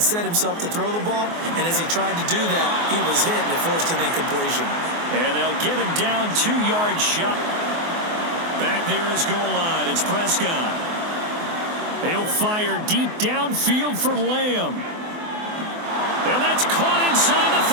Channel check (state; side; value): late; left; 24 ms